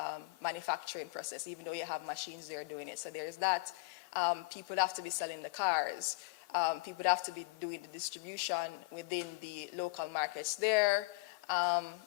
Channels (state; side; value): quieter; right; 26.6 dB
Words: manufacturing process, even though you have machines there doing it. So there's that. People would have to be selling the cars. People would have to be doing the distribution within the local markets there.